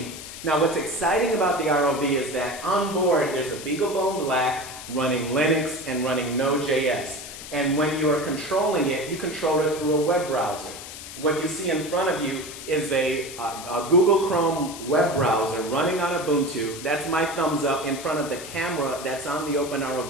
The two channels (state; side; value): noise; left; hiss, 12 dB below the sound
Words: Now what's exciting about the ROV is that on board there's a BeagleBone Black running Linux and running Node.js. And when you are controlling it, you control it through a web browser. What you see in front of you is a Google Chrome web browser running on Ubuntu. That's my thumbs up in front of the camera that's on the